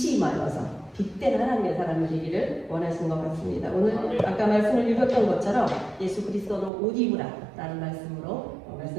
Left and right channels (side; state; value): left; drops out; at 6.7 s